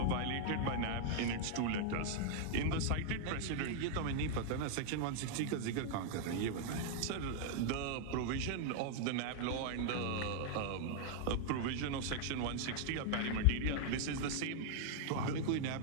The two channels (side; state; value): both; different; correlation 0.00